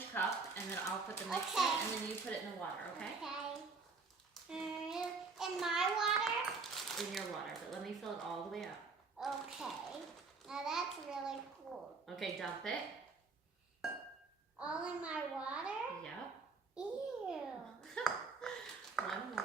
cup, and then I'll put the mix Okay. in, and then you put it in the water, okay? Okay. In my water? In your water, but let me fill it all the way up. Okay. Now that's really cool. Okay, dump it. All in my water? Yep. Ew. One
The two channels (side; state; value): left; quieter; 4.4 dB